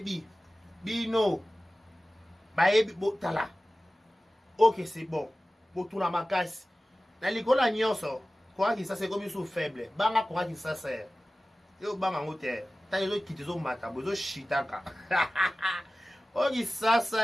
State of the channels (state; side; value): normal; both; correlation 0.96